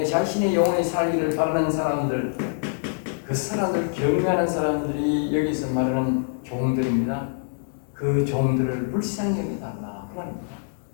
자신의 영혼이 살기를 바라는 사람들, 그 사람들 경외하는 사람들이 여기서 말하는 종들입니다. 그 종들을 불쌍히 여겨달라 그 말입니다.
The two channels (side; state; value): right; silent; digital silence